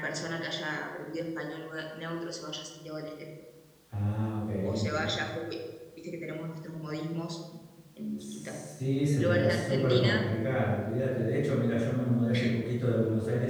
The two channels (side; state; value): both; identical; correlation 1.00